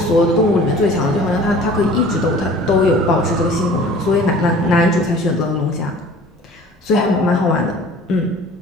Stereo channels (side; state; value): both; normal; correlation 0.46